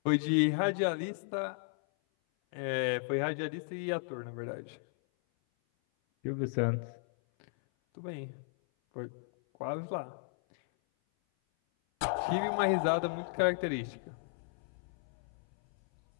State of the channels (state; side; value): silent; right; 55 dB below the other